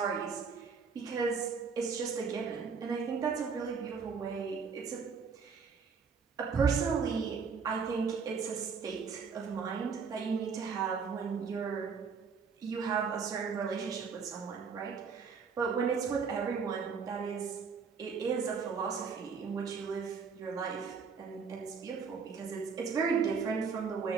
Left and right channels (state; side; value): quieter; left; 5.6 dB